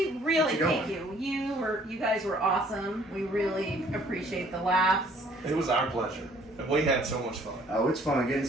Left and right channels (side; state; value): both; normal; correlation 0.59